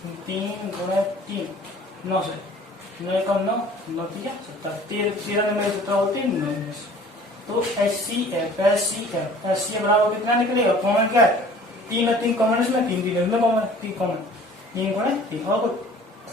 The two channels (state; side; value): normal; both; correlation 0.49